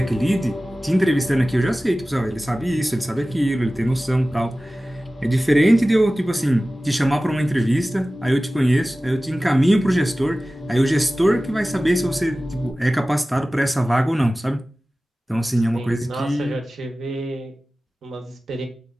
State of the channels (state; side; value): normal; both; correlation 0.97